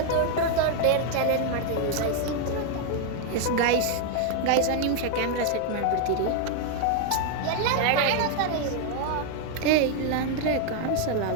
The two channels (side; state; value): both; different; correlation 0.00